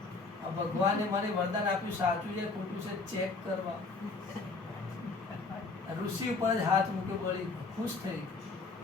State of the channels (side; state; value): right; quieter; 3.9 dB